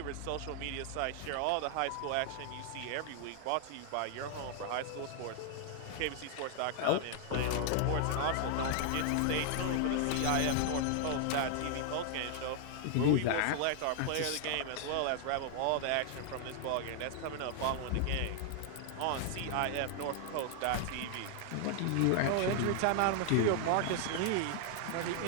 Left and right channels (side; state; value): both; different; correlation 0.00